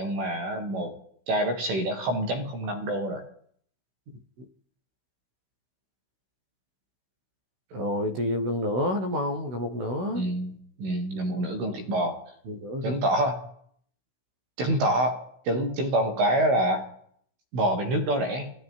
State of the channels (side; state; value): left; late; 16 ms